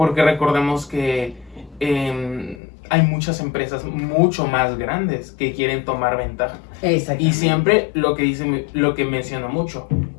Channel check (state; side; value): drops out; right; at 2.6 s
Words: recordemos que hay muchas empresas mucho más grandes que quieren tomar ventaja. Y siempre lo que menciona mucho.